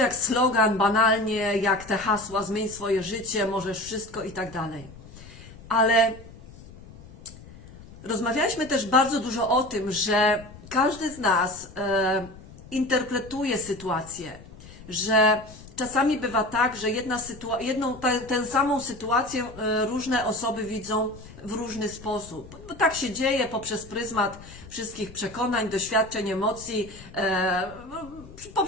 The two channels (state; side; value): noise; left; rumble, 18 dB below the sound